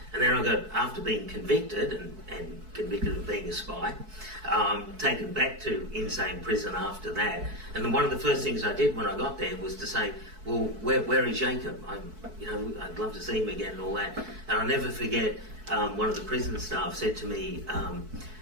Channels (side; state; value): left; late; 4.6 ms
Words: And then I got, after being convicted and convicted of being a spy, taken back to insane prison after that. And then one of the first things I did when I got there was to say, well, where is Jacob? I'd love to see him again and all that. And I'll never forget, one of the prison staff said to me,